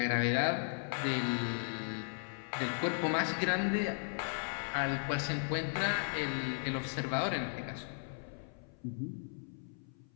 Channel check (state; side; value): silent; right; 54 dB below the other